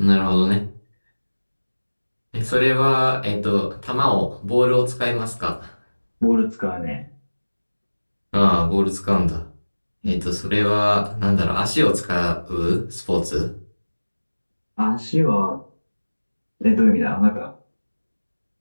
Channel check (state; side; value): inverted; both; correlation -1.00